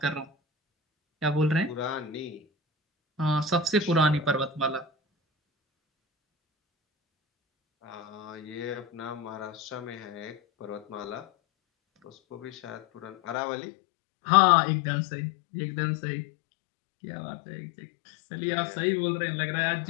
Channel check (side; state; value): right; drops out; at 13.4 s